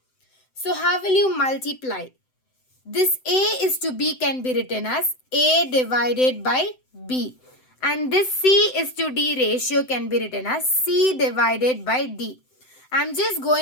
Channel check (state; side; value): late; right; 7.8 ms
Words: So how will you multiply? This A is to B can be written as A divided by B. And this C is to D ratio can be written as C divided by D. I'm just